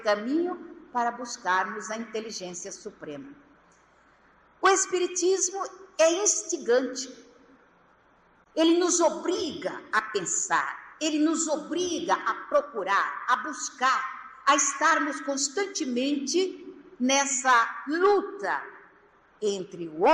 caminho para buscarmos a inteligência suprema. O Espiritismo é instigante. Ele nos obriga a pensar, ele nos obriga a procurar, a buscar, a estarmos constantemente nessa luta entre o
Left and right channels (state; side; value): identical; both; correlation 1.00